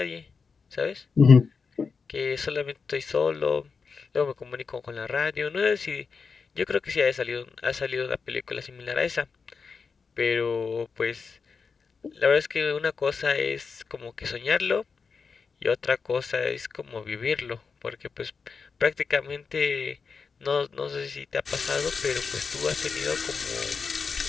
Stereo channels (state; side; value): quieter; right; 5.2 dB